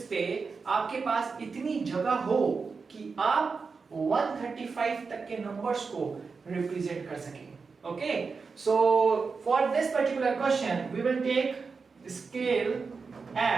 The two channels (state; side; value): quieter; left; 4.9 dB